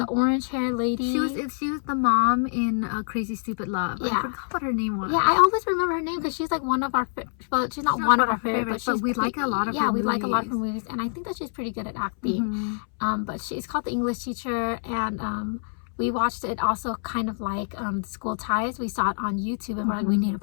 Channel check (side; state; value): right; silent; 61 dB below the other